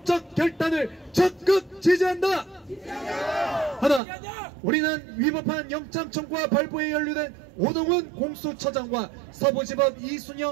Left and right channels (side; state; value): left; drops out; at 4.0 s